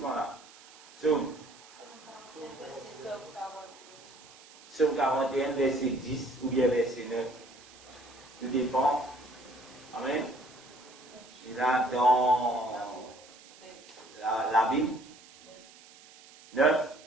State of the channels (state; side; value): noise; right; hiss, 22 dB below the sound